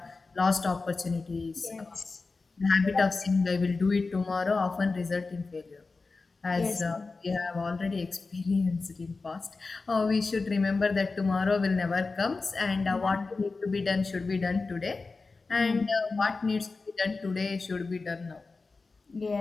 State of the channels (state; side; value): quieter; right; 3.9 dB